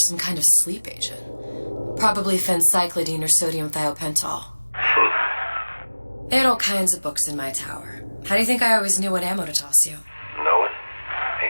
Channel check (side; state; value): both; inverted; correlation -1.00